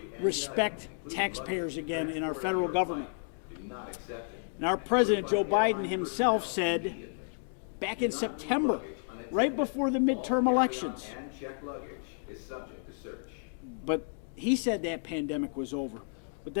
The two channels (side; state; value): right; silent; digital silence